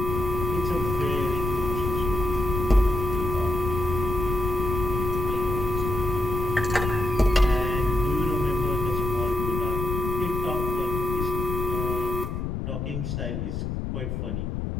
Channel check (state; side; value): noise; left; rumble, 3 dB below the sound